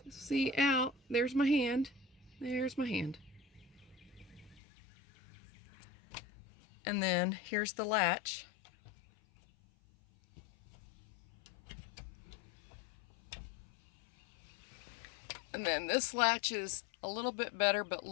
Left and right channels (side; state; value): right; drops out; at 4.6 s